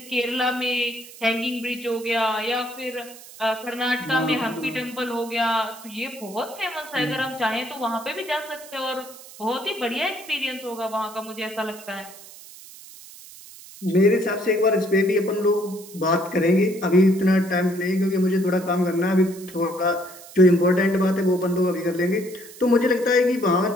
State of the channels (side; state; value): right; noise; hiss, 18 dB below the sound